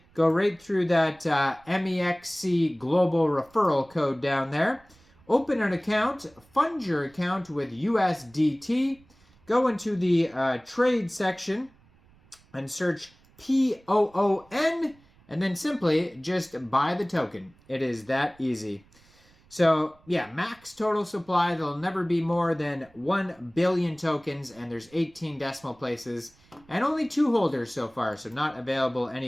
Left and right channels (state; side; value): noise; right; rumble, 30 dB below the sound